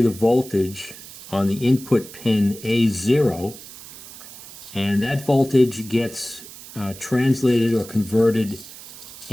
the voltage on the input pin A0, and that voltage gets translated or converted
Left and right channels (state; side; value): noise; right; hiss, 16 dB below the sound